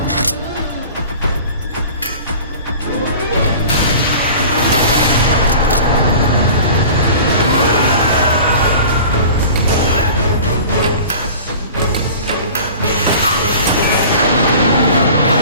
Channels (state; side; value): inverted; both; correlation -0.41